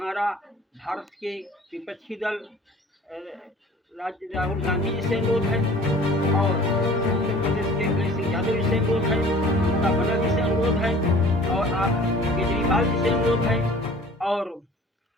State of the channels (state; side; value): normal; both; correlation 0.47